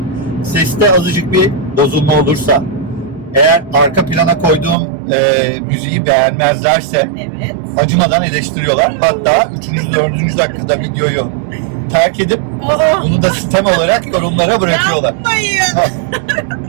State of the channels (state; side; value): drops out; left; at 4.8 s